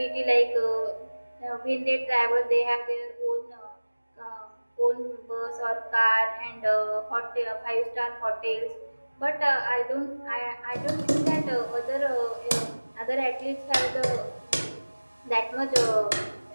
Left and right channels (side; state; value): both; inverted; correlation -1.00